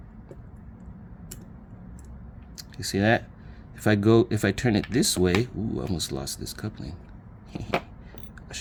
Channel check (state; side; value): identical; both; correlation 1.00